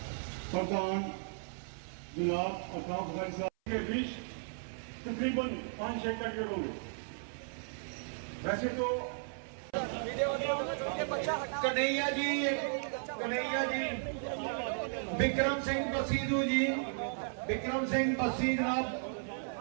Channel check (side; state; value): left; silent; 54 dB below the other